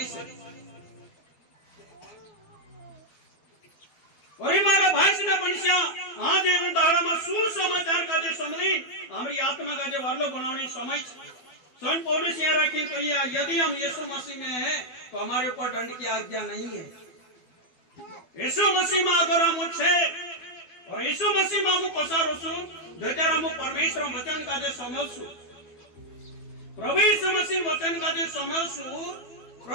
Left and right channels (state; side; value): late; right; 12 ms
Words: है और मारा भाई से मनुष्य आज ये दाड़ा में सुसमाचार का जे समली हमारी आत्मा का जे वारलो बनाने समय संत पौलुस यहाँ रखी कहिया यदि हम यीशु मसीह में हैं तो हमारे ऊपर दंड की आज्ञा नहीं है यीशु मसीह में अगर हम छे और यीशु मसीह में हम पसारो छु जत्यार हम परमेश्वर वचन का जे समझसु प्रभु यीशु मसीह वचन का जे समझसु